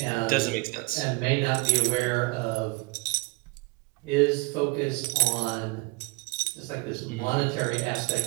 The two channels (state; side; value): quieter; left; 26.1 dB